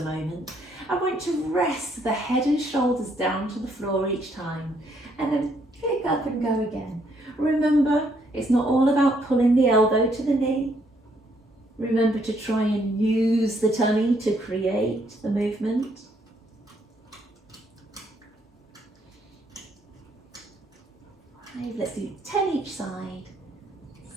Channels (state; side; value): normal; both; correlation 0.70